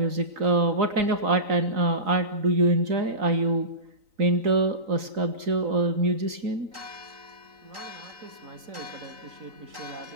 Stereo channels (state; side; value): late; left; 3.9 ms